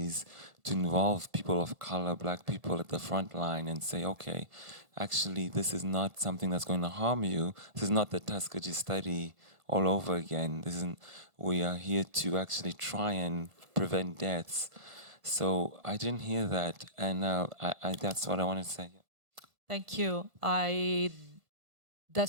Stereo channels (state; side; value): late; left; 1.5 ms